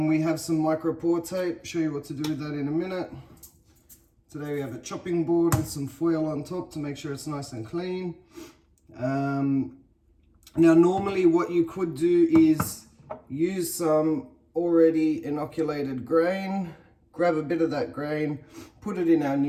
have some micropore tape. Show you what to do with that in a minute. Today we have a chopping board with some foil on top to make sure it's nice and clean. Now normally what you could do is use some already inoculated grain, grab a bit of that grain, put it in our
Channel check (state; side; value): identical; both; correlation 1.00